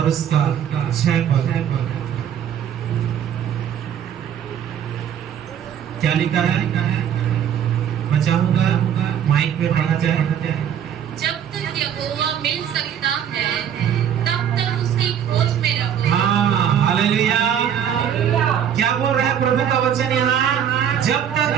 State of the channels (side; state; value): left; quieter; 9.1 dB